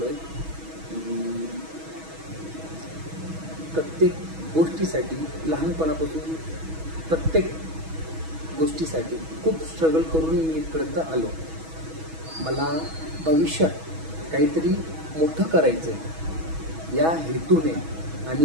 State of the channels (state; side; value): late; left; 6.2 ms